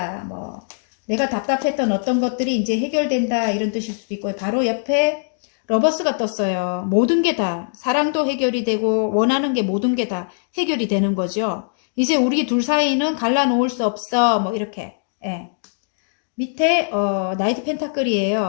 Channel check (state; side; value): silent; right; digital silence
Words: 뭐 내가 답답했던 어떤 것들이 이제 해결된다 이런 뜻일 수도 있고요. 바로 옆에 러버스가 떴어요. 모든 게 다 사랑도 해결이 되고 원하는 게 모든 게 다 해결이 되는 거죠. 이제 우리 둘 사이는 갈라놓을 수 없어. 뭐 이렇게. 예. 밑에 나이트